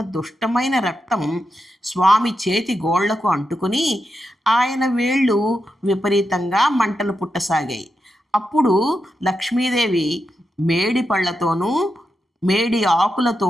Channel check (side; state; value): both; normal; correlation 0.87